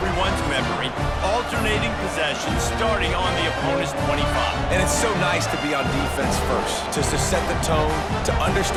memory, alternating possession starting on the opponent's 25. And it's so nice to be on defense first, just to set the tone, to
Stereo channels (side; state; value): both; identical; correlation 1.00